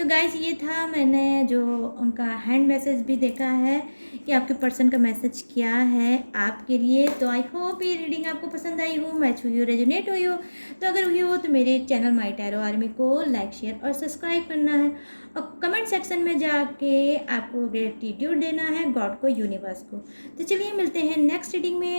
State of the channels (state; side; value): inverted; both; correlation -1.00